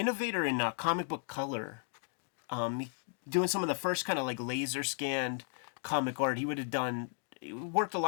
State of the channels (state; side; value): silent; right; 55 dB below the other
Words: in comic book color, doing some of the first kind of like laser scanned comic art. He worked a